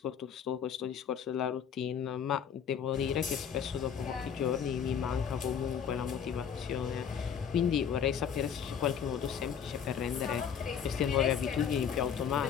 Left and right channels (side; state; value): right; quieter; 7.7 dB